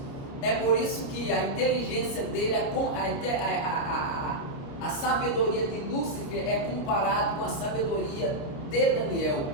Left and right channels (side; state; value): right; late; 29 ms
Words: É por isso que a inteligência dele, a sabedoria de Lúcifer é comparado com a sabedoria de Daniel.